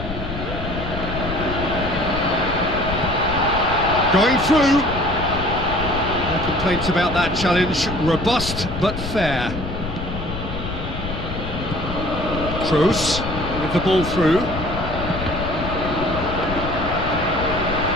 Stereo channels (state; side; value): noise; left; rumble, 7 dB below the sound